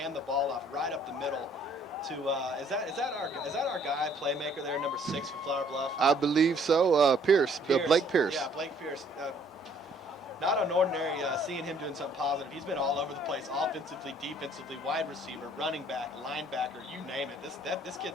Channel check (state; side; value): normal; both; correlation 0.60